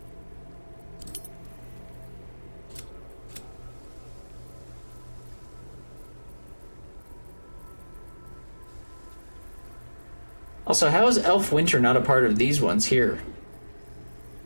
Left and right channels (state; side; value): inverted; both; correlation -1.00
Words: Also, how is Elf Winter not a part of these ones here?